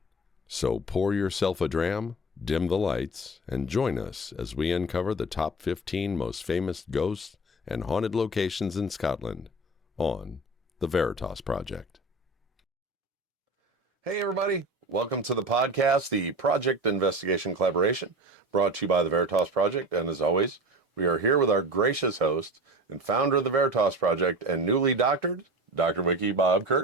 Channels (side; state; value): both; normal; correlation 0.33